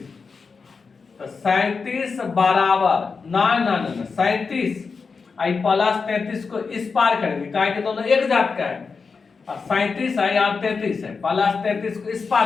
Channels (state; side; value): quieter; right; 5.0 dB